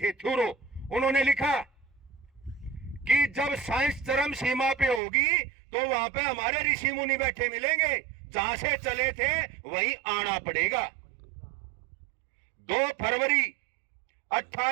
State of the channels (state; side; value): drops out; left; at 5.0 s